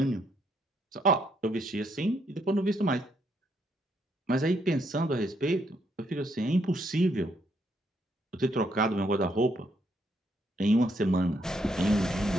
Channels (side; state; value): both; normal; correlation 0.74